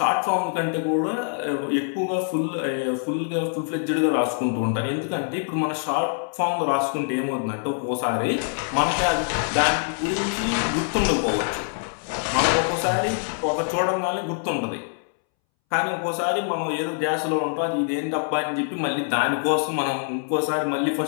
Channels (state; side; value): silent; right; 62 dB below the other